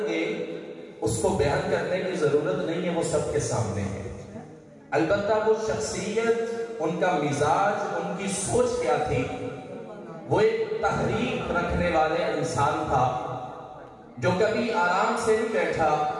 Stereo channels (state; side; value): identical; both; correlation 1.00